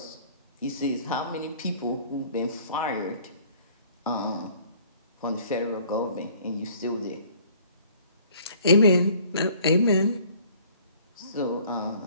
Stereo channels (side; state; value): both; inverted; correlation -0.55